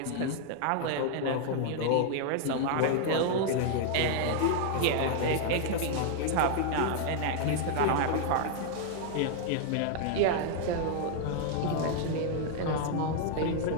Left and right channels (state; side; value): different; both; correlation 0.00